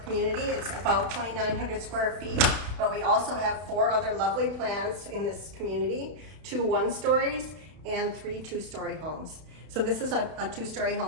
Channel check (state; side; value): late; left; 32 ms